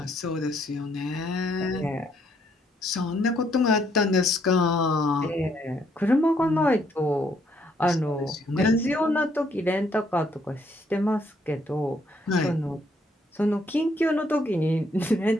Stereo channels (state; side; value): normal; both; correlation 0.70